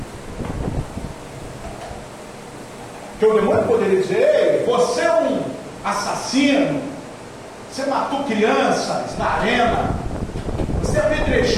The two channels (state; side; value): identical; both; correlation 1.00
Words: Que o demônio poderia dizer: ei, você é um assassino, você matou crianças na arena, você